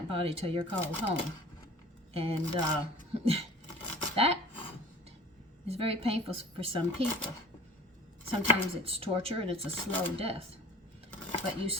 body till you're called home. And that is very painful for some people. Sometimes it's torture and it's a slow death. But you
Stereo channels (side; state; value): both; normal; correlation 0.44